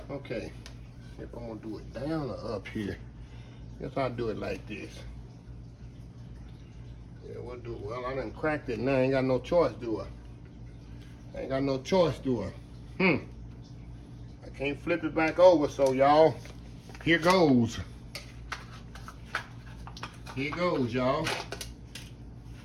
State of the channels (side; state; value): both; identical; correlation 1.00